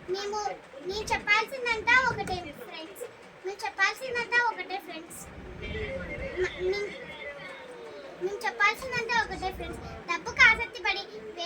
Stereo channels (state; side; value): identical; both; correlation 1.00